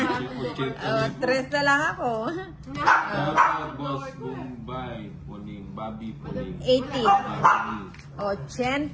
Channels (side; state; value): both; identical; correlation 1.00